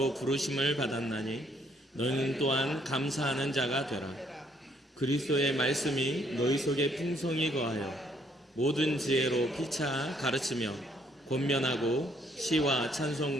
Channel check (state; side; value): normal; both; correlation 0.67